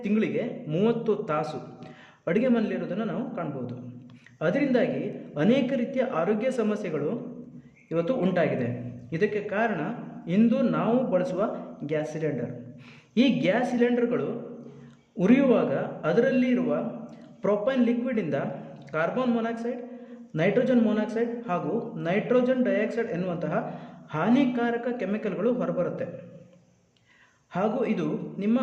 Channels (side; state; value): both; identical; correlation 1.00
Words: ತಿಂಗಳಿಗೆ 30 ತಾಸು ಅಡುಗೆ ಮನೆಯಲ್ಲಿರೋದನ್ನು ನಾವು ಕಾಣಬಹುದು. ಅದರಿಂದಾಗಿ ಅನೇಕ ರೀತಿಯ ಆರೋಗ್ಯ ಸಮಸ್ಯೆಗಳು ಇವತ್ತು ಉಂಟಾಗಿದೆ. ಇದಕ್ಕೆ ಕಾರಣ ಇಂದು ನಾವು ಬಳಸುವ ಗ್ಯಾಸ್ ಸಿಲಿಂಡರ್. ಈ ಗ್ಯಾಸ್ ಸಿಲಿಂಡರ್ಗಳು ಉರಿಯುವಾಗ ಅದರಲ್ಲಿ ಇರುವ ಪ್ರೊಪೈನ್ ಲಿಕ್ವಿಡಿಂದ ಕಾರ್ಬನ್ ಮೊನಾಕ್ಸೈಡ್, ನೈಟ್ರೋಜನ್ ಮೊನಾಕ್ಸೈಡ್ ಹಾಗೂ ನೈಟ್ರೋಜನ್ ಡೈಆಕ್ಸೈಡ್ ಎನ್ನುವಂತಹ ಹಾನಿಕಾರಕ ಕೆಮಿಕಲ್ಗಳು ಹೊರಬರುತ್ತೆ. ಹಾಗೂ ಇದು ನಿಮ್ಮ